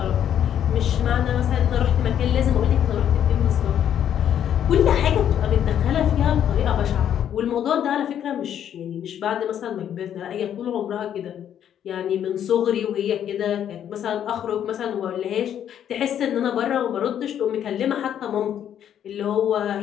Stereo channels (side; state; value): right; quieter; 9.8 dB